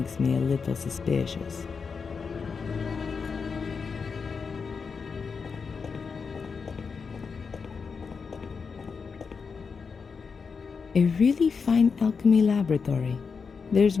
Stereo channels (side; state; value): right; quieter; 5.4 dB